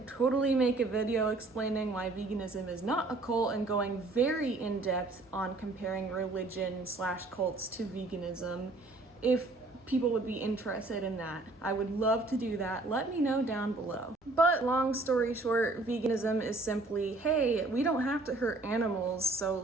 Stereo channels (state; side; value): quieter; left; 3.1 dB